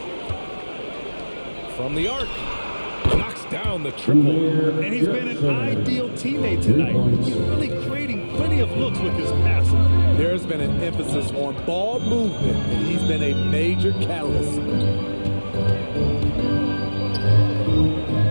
From the arc. Knocks down the triple. And he's been an ideal teammate tonight. He's really creating plenty of looks with his passing. There's been an emphasis on ball movement, and he's been a major catalyst.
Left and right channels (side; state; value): both; inverted; correlation -1.00